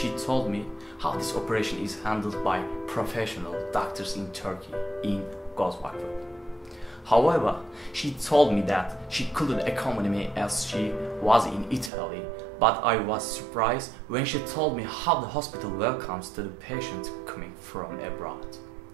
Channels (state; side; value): drops out; left; at 11.9 s